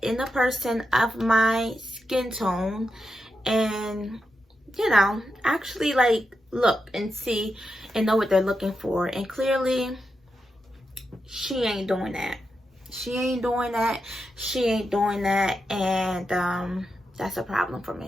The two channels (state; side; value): normal; both; correlation 0.86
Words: in the person of my skin tone, and you know, actually like look and see and know what they're looking for. And clearly she ain't doing that. She ain't doing that. She ain't doing that. And that's a problem for